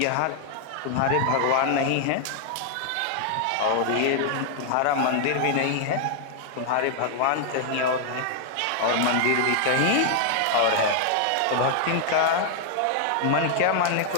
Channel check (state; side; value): different; both; correlation 0.00